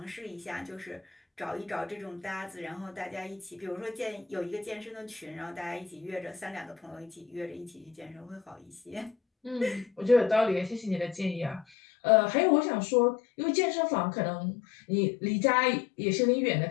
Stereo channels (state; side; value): drops out; right; at 11.7 s